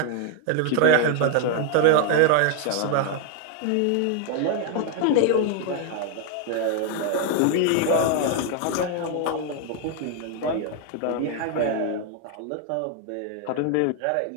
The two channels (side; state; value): both; different; correlation 0.00